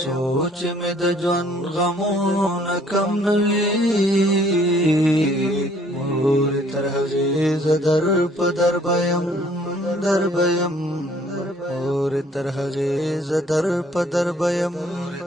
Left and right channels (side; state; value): both; normal; correlation 0.60